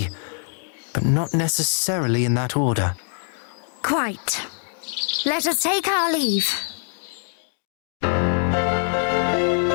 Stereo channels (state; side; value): silent; right; 61 dB below the other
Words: but not necessarily in that order. Quite. Let us take our leave.